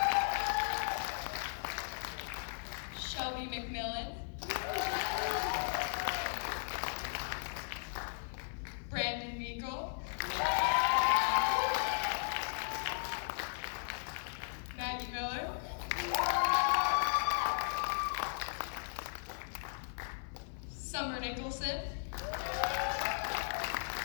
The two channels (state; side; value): silent; right; 53 dB below the other